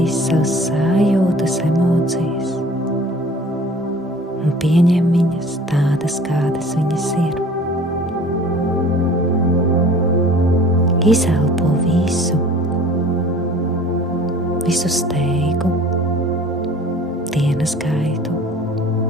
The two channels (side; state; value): both; normal; correlation 0.47